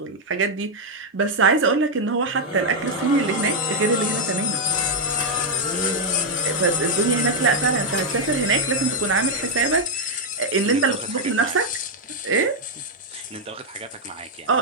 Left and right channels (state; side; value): normal; both; correlation 0.00